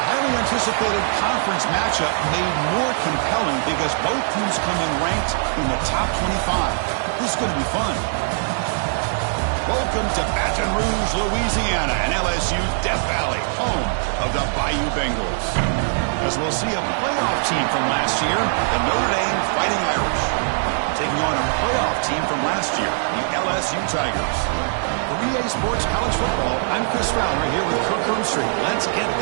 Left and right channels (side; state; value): left; silent; digital silence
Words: anticipated conference matchup made more compelling because both teams come in ranked in the top 25. This is going to be fun. Welcome to Baton Rouge, Louisiana, and LSU Death Valley, home of the Bayou Bengals. As we'll see a playoff team from last year, the Notre Dame Fighting Irish, taking on a playoff team from last year, the LSU Tigers. For EA Sports College Football, I'm Chris Fowler here with Kirk Herbstreit. Let's get